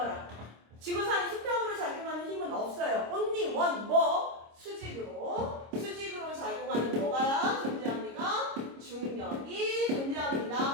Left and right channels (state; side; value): late; left; 26 ms